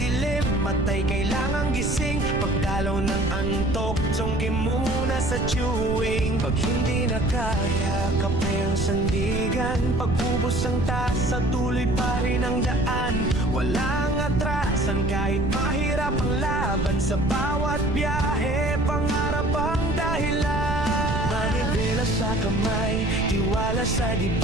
matay kailangang gising. Pagdalaw ng antok, sungki muna sa chewing. Pag hindi na kaya, kape ang sandigan. Pag-ubos ang tasa, tuloy pa rin ang daan. Walang atrasan kahit mahirap ang laban. Sa bawat biyahe, pangarap ang dahilan. Manibela sa kamay, tiwala sa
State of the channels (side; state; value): right; noise; rumble, 3 dB below the sound